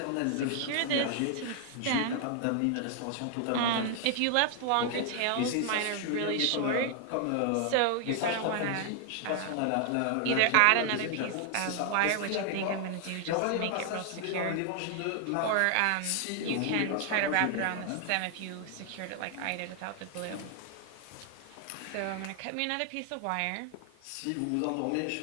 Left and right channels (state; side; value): different; both; correlation 0.00